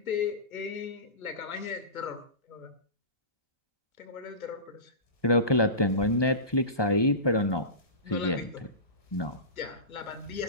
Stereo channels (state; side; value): late; right; 1.2 ms